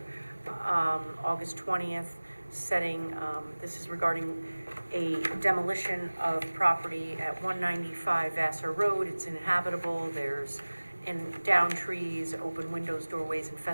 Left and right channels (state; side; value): inverted; both; correlation -1.00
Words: August 20th, setting, this is regarding a demolition of property at 195 Vassar Road. It's inhabitable, there's down trees, open windows, doorways